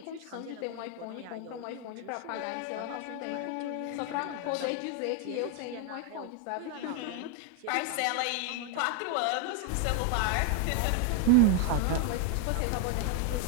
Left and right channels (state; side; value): different; both; correlation 0.01